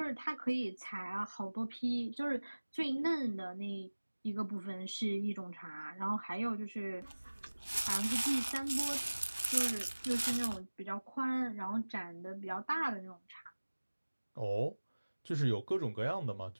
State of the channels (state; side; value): inverted; both; correlation -1.00